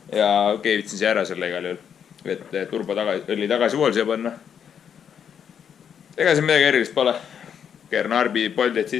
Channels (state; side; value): quieter; right; 8.0 dB